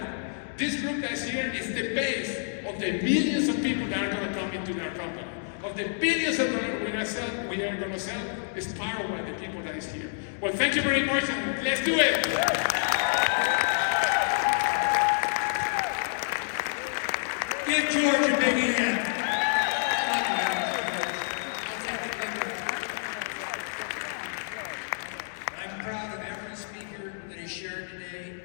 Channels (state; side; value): silent; right; digital silence